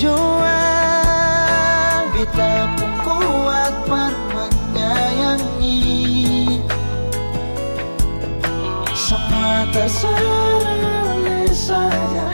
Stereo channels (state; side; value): inverted; both; correlation -1.00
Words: Beta pun kuat per menyayangi. Semua terserah saja.